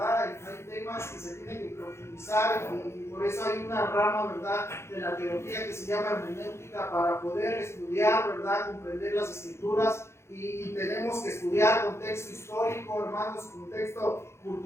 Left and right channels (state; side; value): late; right; 0.13 ms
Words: Hay temas que se tienen que profundizar y por eso hay una rama, ¿verdad?, de la teología que se llama hermenéutica para poder estudiar, ¿verdad?, comprender las escrituras y tenemos que estudiar contexto histórico, hermanos, contexto